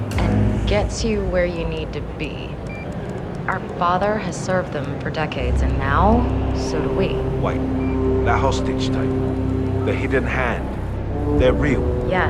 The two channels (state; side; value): identical; both; correlation 1.00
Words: and gets you where you need to be. Our father has served them for decades, and now, so do we. Wait, that hostage tape, the hidden hand, they're real.